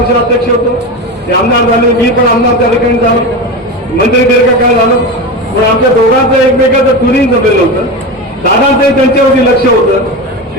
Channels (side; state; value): both; normal; correlation 0.22